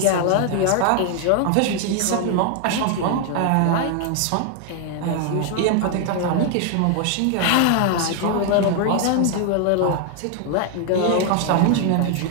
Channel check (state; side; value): different; both; correlation 0.00